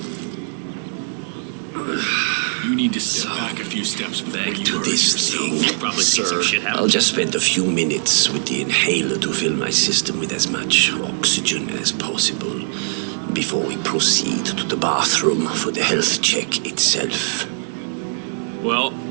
You need to step back a few steps before Back you to hurt this yourself. thing. You probably see some shit happen. I'll just spend a few minutes with the inhaler to fill my system with as much oxygen as possible before we proceed to the bathroom for the health check itself. Well,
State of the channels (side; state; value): left; silent; 65 dB below the other